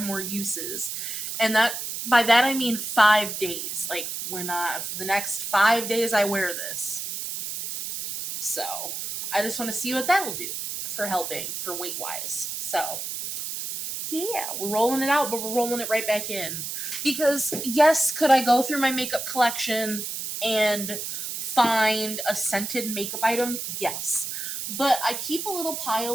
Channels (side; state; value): right; noise; hiss, 5 dB below the sound